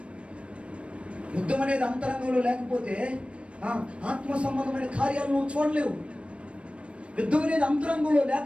యుద్ధం అనేది అంతరంగంలో లేకపోతే ఆత్మ సంబంధమైన కార్యాలను నువ్వు చూడలేవు. యుద్ధం అనేది అంతరంగంలో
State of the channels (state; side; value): late; left; 0.060 ms